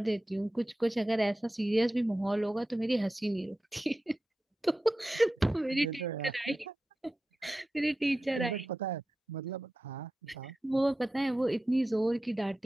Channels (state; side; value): normal; both; correlation 0.93